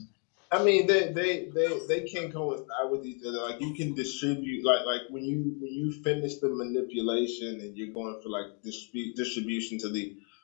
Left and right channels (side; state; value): right; quieter; 39.0 dB